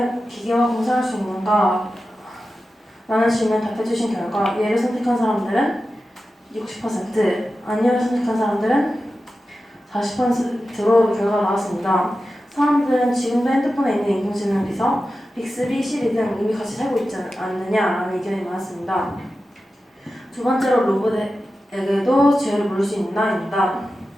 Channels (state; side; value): normal; both; correlation 0.93